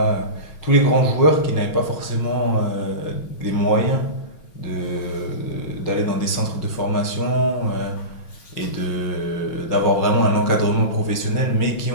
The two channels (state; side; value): late; right; 5.5 ms